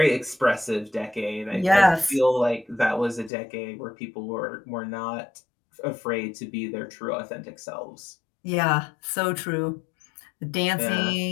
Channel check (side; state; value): right; drops out; at 3.3 s